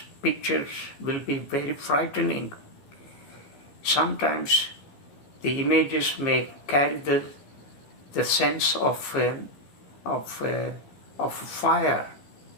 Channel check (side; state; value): right; late; 15 ms